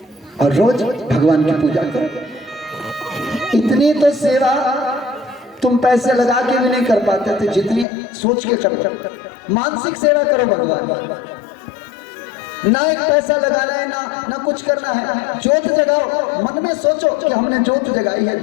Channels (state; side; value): drops out; right; at 7.9 s